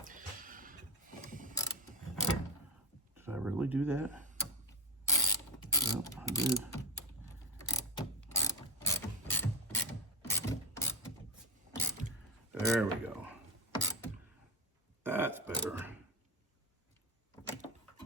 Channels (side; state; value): both; normal; correlation 0.14